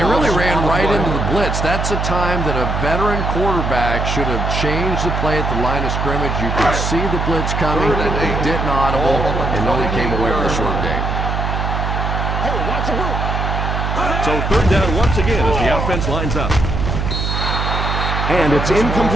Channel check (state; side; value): noise; right; hum, 1 dB below the sound